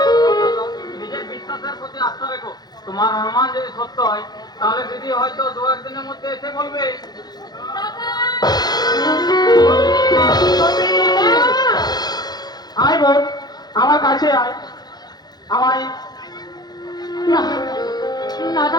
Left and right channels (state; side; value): late; right; 0.20 ms